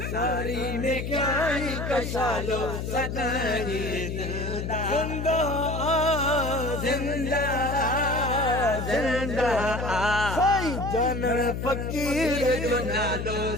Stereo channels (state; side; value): noise; left; hum, 4 dB below the sound